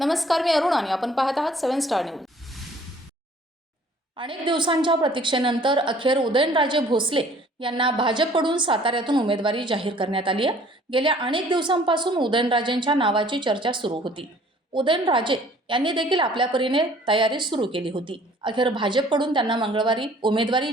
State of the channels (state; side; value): normal; both; correlation 0.55